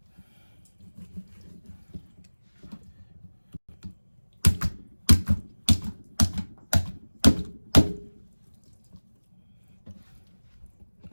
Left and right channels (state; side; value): inverted; both; correlation -1.00